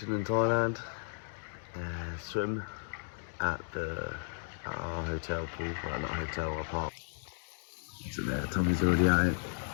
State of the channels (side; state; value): right; silent; digital silence